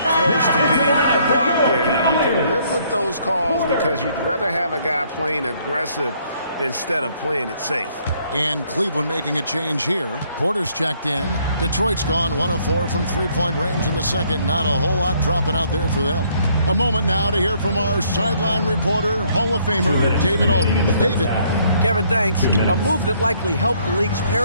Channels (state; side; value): inverted; both; correlation -0.66